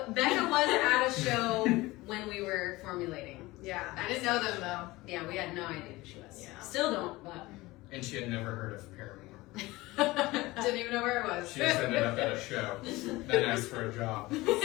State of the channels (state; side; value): quieter; right; 20.1 dB